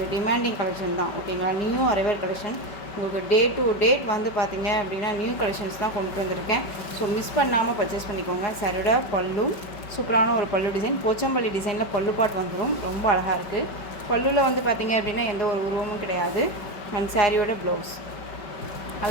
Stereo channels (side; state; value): right; late; 5.2 ms